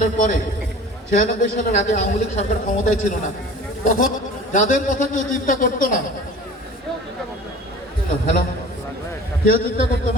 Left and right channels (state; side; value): normal; both; correlation 0.42